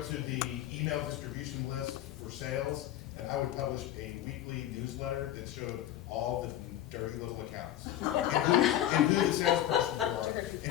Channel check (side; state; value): right; quieter; 12.6 dB